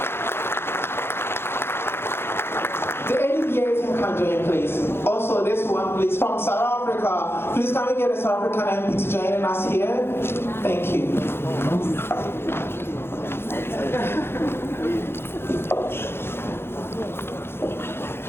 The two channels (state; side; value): late; right; 0.11 ms